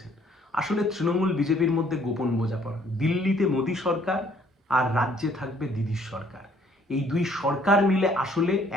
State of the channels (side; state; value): both; normal; correlation 0.62